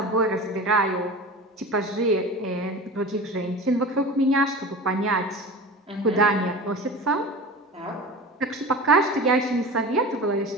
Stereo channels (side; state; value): both; normal; correlation 0.33